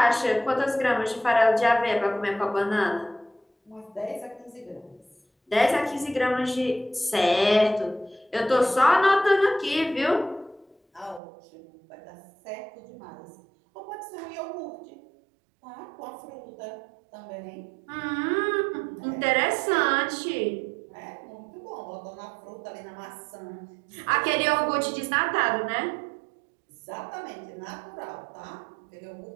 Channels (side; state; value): left; drops out; at 11.2 s